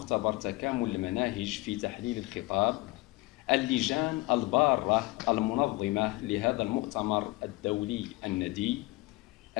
تكامل المناهج في تحليل الخطاب، اللجان البارة المنظمة لهذا المؤتمر الدولي الندي،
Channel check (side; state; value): right; quieter; 21.8 dB